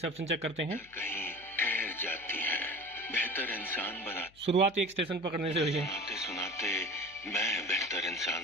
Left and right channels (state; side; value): noise; left; hum, 27 dB below the sound